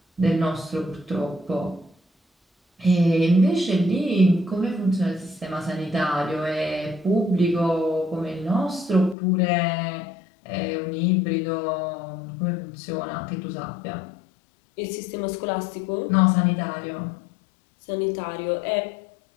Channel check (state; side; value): drops out; right; at 9.2 s